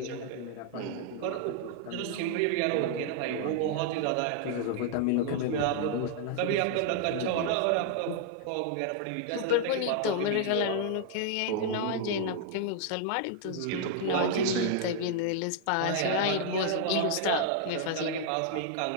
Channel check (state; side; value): different; both; correlation -0.01